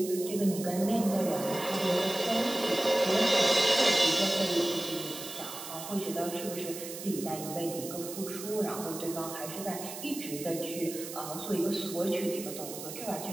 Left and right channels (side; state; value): right; noise; hiss, 10 dB below the sound